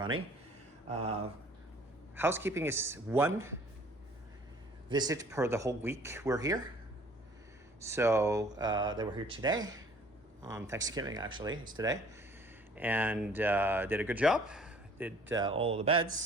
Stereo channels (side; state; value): both; normal; correlation 0.54